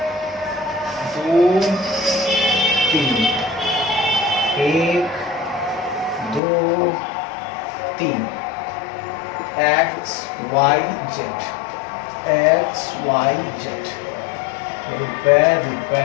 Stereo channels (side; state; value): right; drops out; at 6.4 s